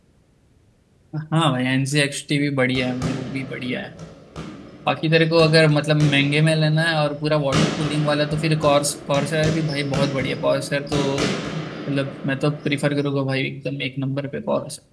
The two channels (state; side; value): identical; both; correlation 1.00